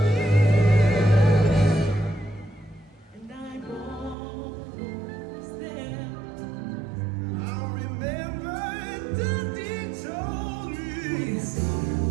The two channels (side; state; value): left; drops out; at 4.2 s